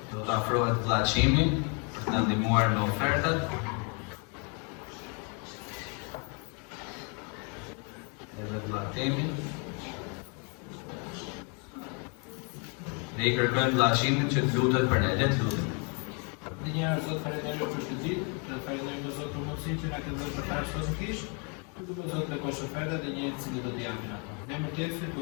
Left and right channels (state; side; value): quieter; right; 35.8 dB